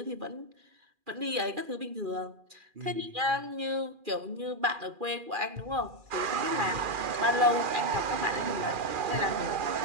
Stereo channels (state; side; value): late; left; 2.4 ms